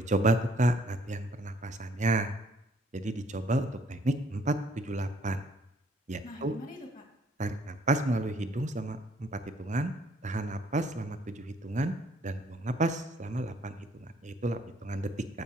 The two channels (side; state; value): both; normal; correlation 0.63